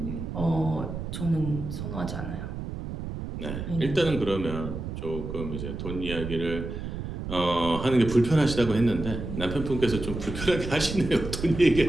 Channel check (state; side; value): noise; right; rumble, 7 dB below the sound